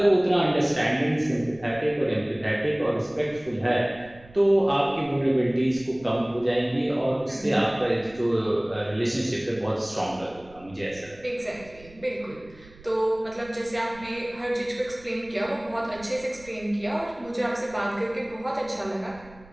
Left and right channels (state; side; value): noise; right; rumble, 23 dB below the sound